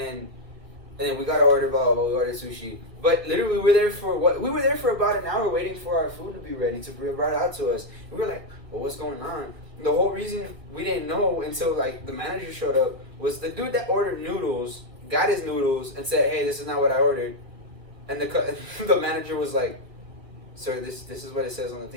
we got to order, we ordered sushi. But literally we were there for about an hour waiting for our food to be ready to be brought out to us. We were like, well, what's going on? The whole reason we didn't know until like the manager showed up was the dude that ordered noodles got his noodles and said, hey, this is not what I ordered. And the manager was like, sir, this is what it says on the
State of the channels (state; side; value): late; left; 1.5 ms